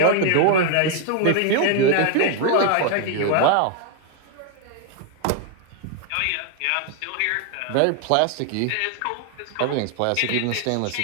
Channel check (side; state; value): both; different; correlation 0.00